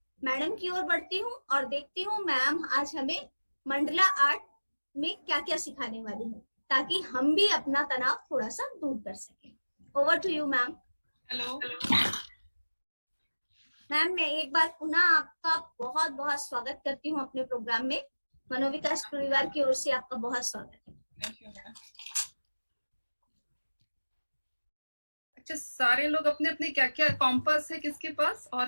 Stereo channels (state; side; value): inverted; both; correlation -1.00